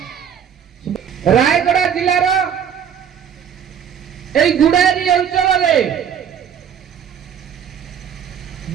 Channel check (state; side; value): quieter; left; 8.3 dB